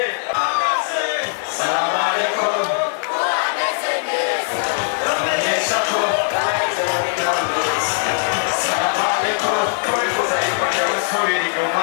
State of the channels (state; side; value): silent; right; digital silence